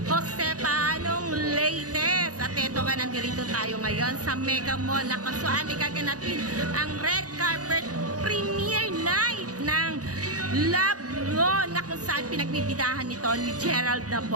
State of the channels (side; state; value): left; late; 0.67 ms